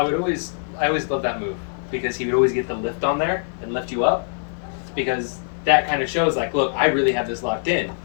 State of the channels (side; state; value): right; silent; 64 dB below the other